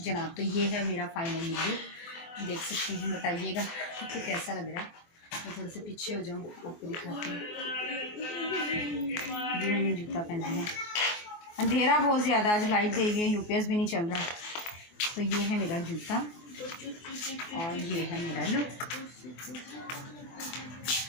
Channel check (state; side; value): late; right; 24 ms